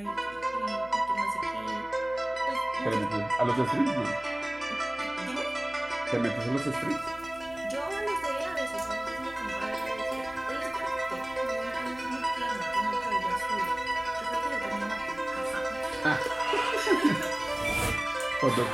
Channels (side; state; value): left; noise; hum, 21 dB below the sound